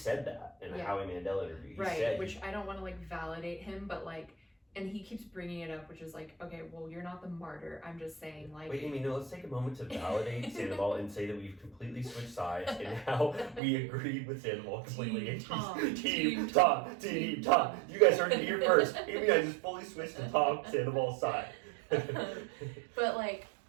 that in a Howie Mandel interview. He said, which I don't want to validate him, but and he keeps bringing it up, which is okay, well, you're not the martyr. I'm just saying Wait, Amy, no, let's take a moment to validate Sandoval and say that we've completely switched sides and now we agree with Sandoval completely. Team Tom. You guys heard it here first. Amy and I just fully switched to Tom Sandoval's side. But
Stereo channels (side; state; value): left; drops out; at 13.6 s